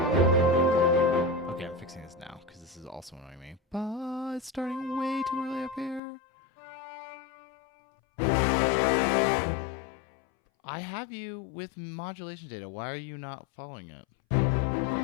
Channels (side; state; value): right; drops out; at 6.0 s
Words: Okay, I'm fixing this now, because this is also annoying me. But it's starting way too early up here. I have you with modulation data. Why are you not following it?